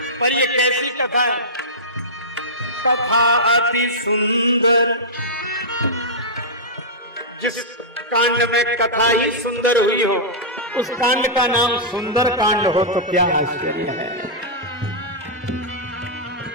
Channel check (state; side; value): normal; both; correlation -0.13